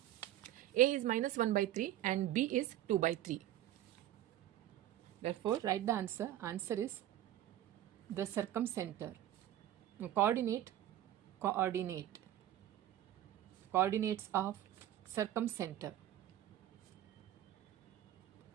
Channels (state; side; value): quieter; left; 12.7 dB